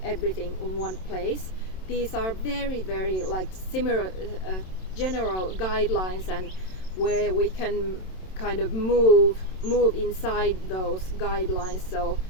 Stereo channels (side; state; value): right; late; 27 ms